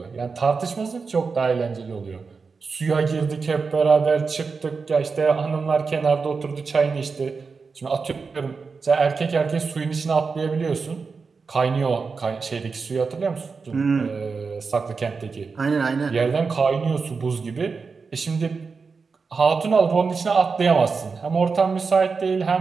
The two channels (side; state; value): left; quieter; 4.9 dB